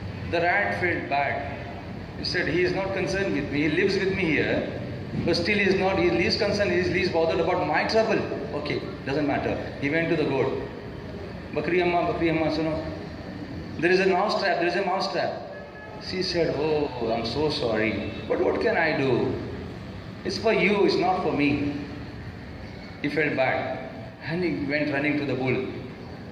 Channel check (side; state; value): both; identical; correlation 1.00